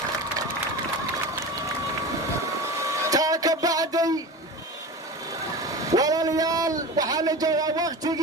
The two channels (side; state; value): both; normal; correlation 0.30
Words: تاك بعدي ولا ليال وحال جوا